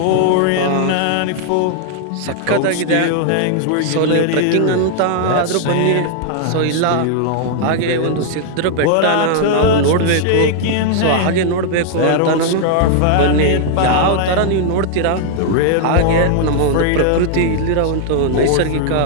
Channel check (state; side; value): different; both; correlation -0.01